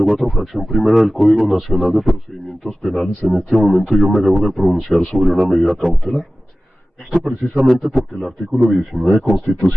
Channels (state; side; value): normal; both; correlation 0.96